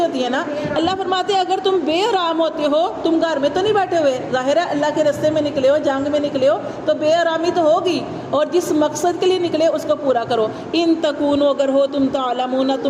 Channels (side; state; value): both; identical; correlation 1.00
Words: ہے نا۔ اللہ فرماتے ہیں اگر تم بے آرام ہوتے ہو، تم گھر میں تو نہیں بیٹھے ہوئے، ظاہر ہے اللہ کے راستے میں نکلے ہو، جنگ میں نکلے ہو تو بے آرامی تو ہوگی، اور جس مقصد کے لیے نکلے اس کو پورا کرو۔ ان تکونوا، اگر ہو تم تعلمون،